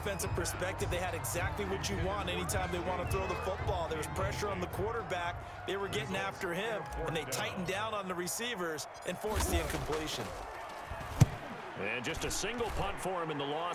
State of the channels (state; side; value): identical; both; correlation 1.00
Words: perspective, they had exactly what you want anytime they want to throw the football. There was pressure on the quarterback. They were getting after him, and they tightened down on the receivers and forced the incompletion. And just a single punt for him in the